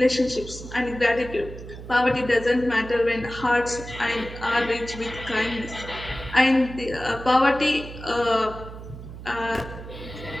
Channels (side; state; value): right; noise; hum, 12 dB below the sound